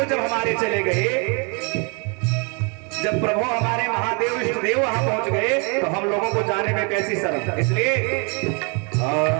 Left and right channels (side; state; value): left; quieter; 34.5 dB